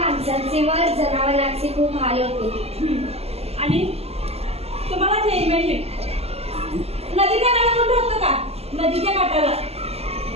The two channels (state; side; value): late; left; 0.29 ms